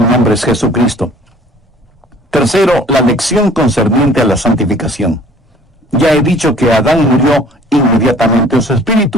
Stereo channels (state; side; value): normal; both; correlation 0.53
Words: nombre es Jesucristo. Tercero, la lección concerniente a la santificación. Ya he dicho que Adán murió inmediatamente en su